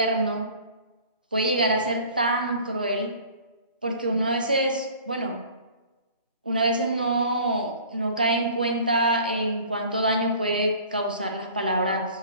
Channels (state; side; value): inverted; both; correlation -0.47